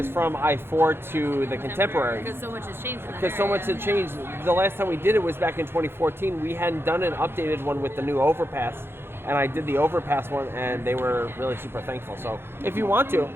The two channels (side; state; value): left; late; 0.11 ms